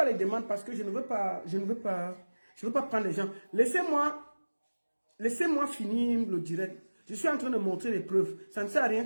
les demandes parce que je ne veux pas prendre les gens. Laissez-moi finir le direct. Je suis en train de montrer les preuves. Ça ne sert à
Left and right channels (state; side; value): inverted; both; correlation -1.00